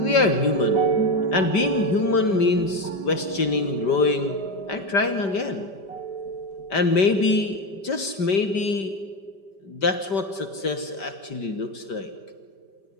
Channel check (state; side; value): late; right; 5.1 ms